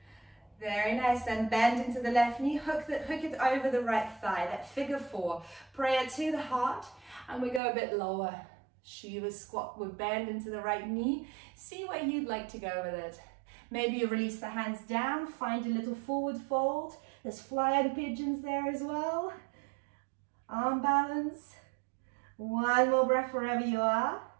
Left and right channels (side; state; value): left; drops out; at 7.6 s